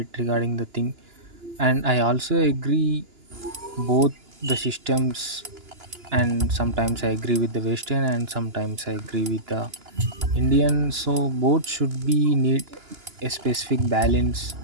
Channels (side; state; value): left; late; 2.9 ms